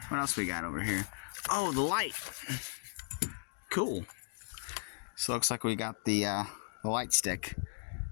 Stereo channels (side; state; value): right; silent; digital silence